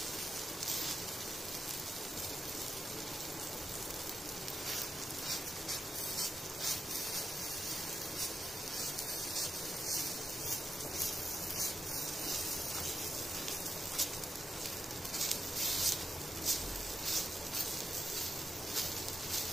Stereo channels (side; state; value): both; normal; correlation 0.86